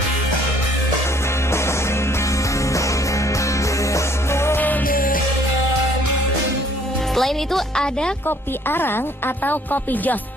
Selain itu ada kopi arang atau kopi jos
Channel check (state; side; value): normal; both; correlation 0.60